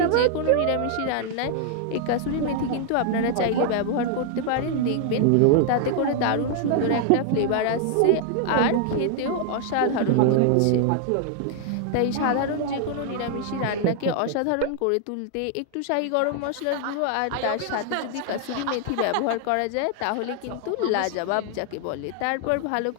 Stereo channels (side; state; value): both; different; correlation 0.00